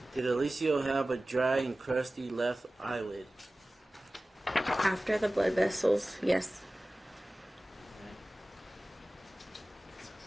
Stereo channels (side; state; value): both; normal; correlation 0.97